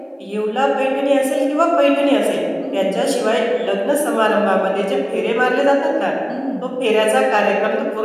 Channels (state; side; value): identical; both; correlation 1.00